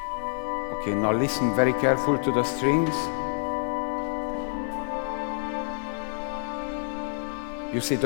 Okay, now listen very careful to the strings. You see,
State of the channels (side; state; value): right; silent; digital silence